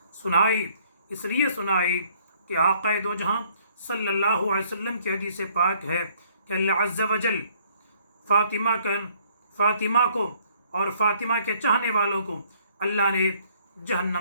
سنائی، اس لیے سنائی کہ آقا دو جہاں صلی اللہ علیہ وسلم کی حدیث پاک ہے کہ اللہ عز و جل فاطمہ کو اور فاطمہ کے چاہنے والوں کو اللہ نے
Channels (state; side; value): inverted; both; correlation -0.64